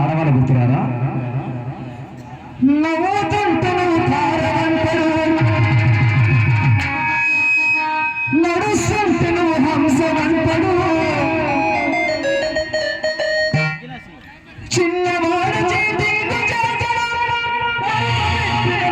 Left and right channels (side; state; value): both; identical; correlation 1.00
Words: ఆడవాళ్ళ గుర్తురాదా నడుస్తుంటే నువ్వు హంసవంతడు చిన్నవాడు